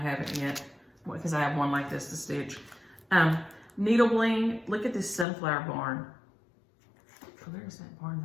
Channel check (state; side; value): drops out; right; at 5.2 s